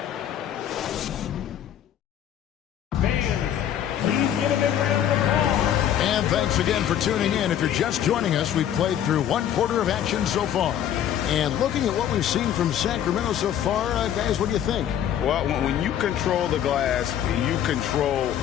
Thanks again for tuning in. If you're just joining us, we've played through 1 quarter of action so far. And looking at what we've seen from Sacramento so far, guys, what do you think? Well, when you control the glass, you control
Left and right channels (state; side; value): quieter; right; 10.3 dB